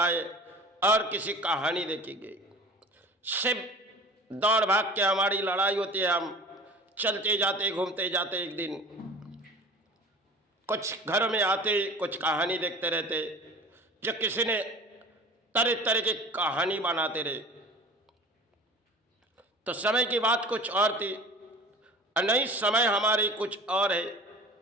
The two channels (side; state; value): both; normal; correlation 0.41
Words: और किसी कहानी देखी गई। सिर्फ दौड़ भाग के हमारी लड़ाई होती है। हम चलते जाते घूमते जाते एक दिन कुछ घरों में आते कुछ कहानी देखते रहते जो किसी ने तरह तरह की कहानी बनाते रहे। तो समय की बात कुछ और थी और नई समय हमारी कुछ और है,